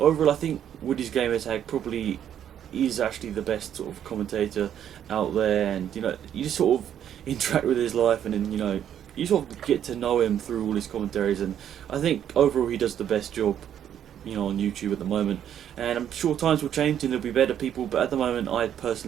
I think Woody's Gamertag probably is actually the best sort of commentator out there, and you know, you just sort of interact with his life, and then you know, you sort of get to know him through all his commentaries, and I think overall he does the best job, you know, on YouTube at the moment. And I'm sure times will change and there'll be better people, but at the moment I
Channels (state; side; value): quieter; left; 9.8 dB